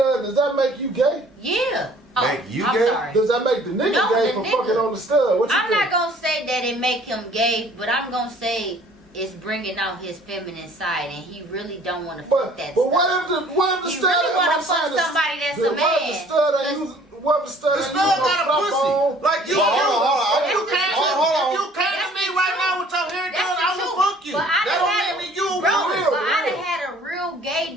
does that make you gay? Yeah. Oh, Make you I'm gay? sorry. Does that make the nigga No, gay the for nigga. fucking on the stud? What you I'm think? not gonna say that it make him gay, but I'm gonna say it's bringing out his feminine side, and he really don't want to fuck that But stuff. what if the He stud? really wanna I'm saying fuck the- somebody that's the- a What if the man. stud ain't using? What if the stud The ain't stud using got a no pussy. strap on? Like you, Hold on. That's you the came, truth. hold on. if you came to me right now with your hair That's done, the I truth. will fuck you. But I That done don't had- make me you. Bro, real, but I real. done had a real gay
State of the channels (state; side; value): normal; both; correlation 0.54